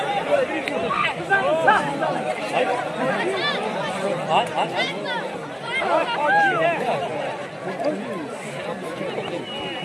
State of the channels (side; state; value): both; identical; correlation 1.00